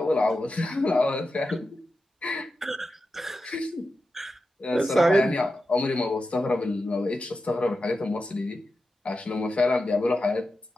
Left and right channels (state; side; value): normal; both; correlation 0.91